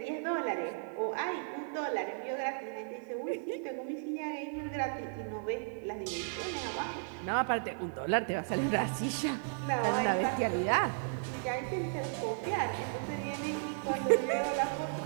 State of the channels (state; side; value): silent; left; 55 dB below the other